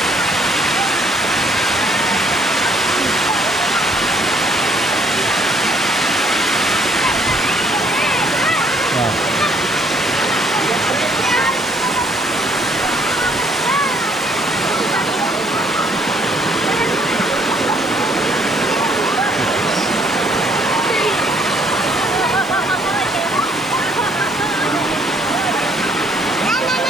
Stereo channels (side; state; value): left; noise; hiss, 24 dB below the sound